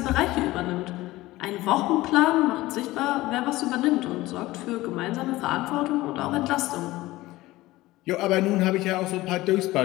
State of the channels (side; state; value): right; quieter; 18.2 dB